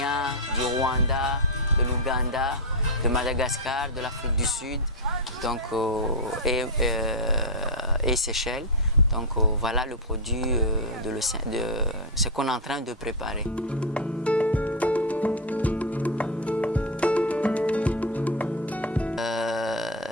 du Rwanda, de l'Ouganda, de Madagascar, de l'Afrique du Sud donc, et Seychelles. Donc voilà le produit de ce qu'on est en train de préparer.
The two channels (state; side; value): normal; both; correlation 0.05